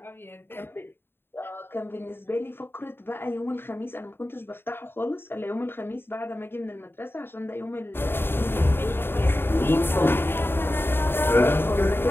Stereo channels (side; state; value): right; late; 0.11 ms